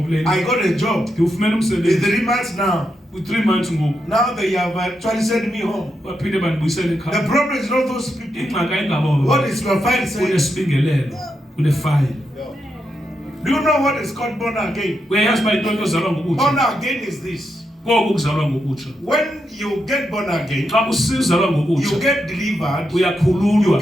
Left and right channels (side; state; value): both; normal; correlation 0.84